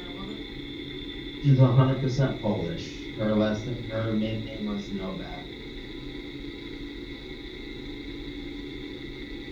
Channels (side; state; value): both; identical; correlation 1.00